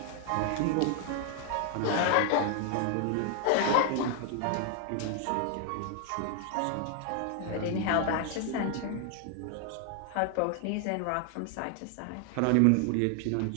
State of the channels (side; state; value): both; different; correlation 0.00